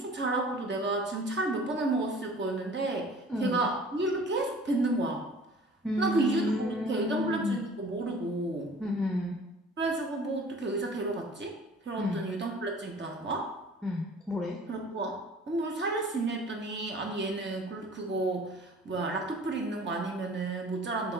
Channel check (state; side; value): normal; both; correlation 0.47